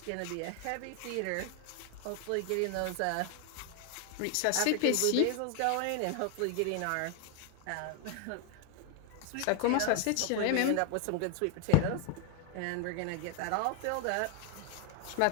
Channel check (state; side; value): different; both; correlation 0.00